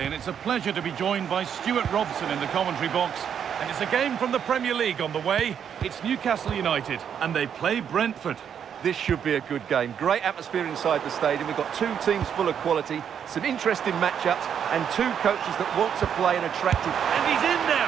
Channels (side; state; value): left; quieter; 8.3 dB